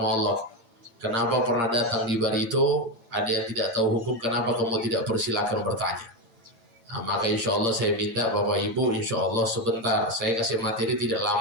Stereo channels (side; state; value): left; late; 8.7 ms